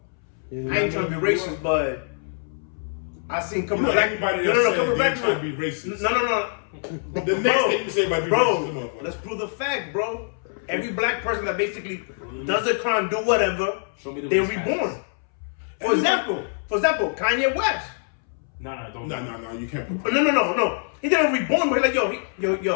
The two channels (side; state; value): right; silent; 62 dB below the other